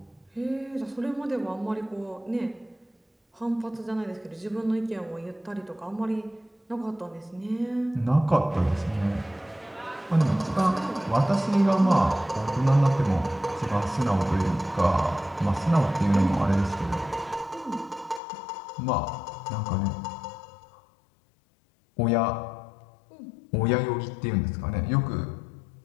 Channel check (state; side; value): drops out; right; at 18.2 s